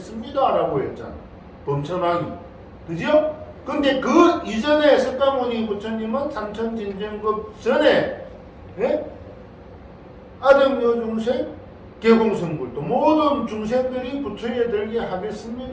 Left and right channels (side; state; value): both; identical; correlation 1.00